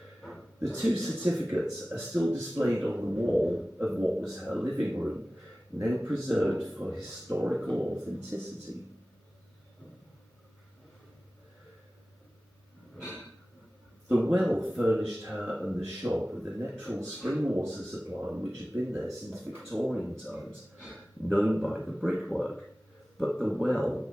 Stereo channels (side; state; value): both; normal; correlation 0.96